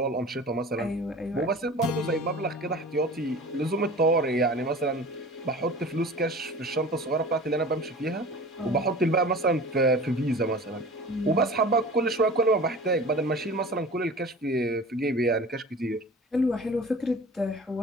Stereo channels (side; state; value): both; normal; correlation 0.39